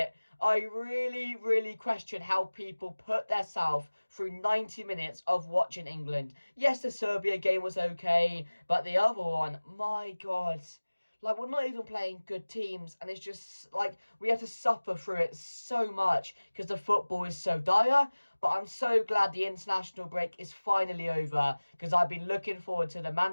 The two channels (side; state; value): both; inverted; correlation -1.00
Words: I really question how people put themselves through 90 minutes of watching England. Yes, the Serbia game was okay, but the other one, my God. Like, we're not even playing good teams, and it's just, like, we have to suffer through it so much because the football is so dire. But I'm so glad the international break is finally over, because I've been looking forward to the